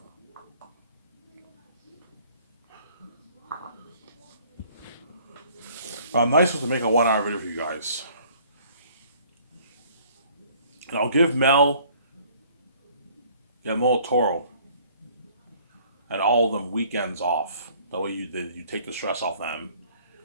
But I'm nice to make a 1 hour video for you guys. And I'll give Mel, Guillermo Toro, and all of them weekends off. That way you take the stress off them.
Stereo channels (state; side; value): inverted; both; correlation -0.57